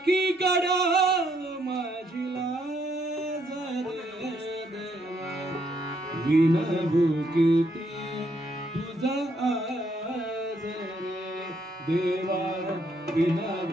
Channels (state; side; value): normal; both; correlation 0.72